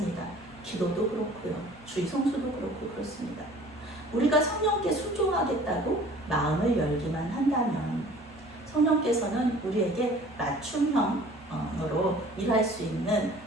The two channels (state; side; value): normal; both; correlation 0.48